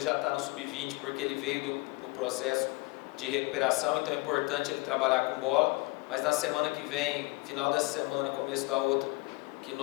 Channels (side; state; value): right; quieter; 24.9 dB